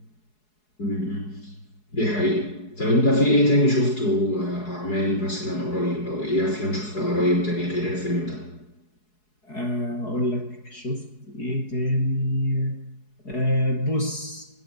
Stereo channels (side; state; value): right; late; 4.7 ms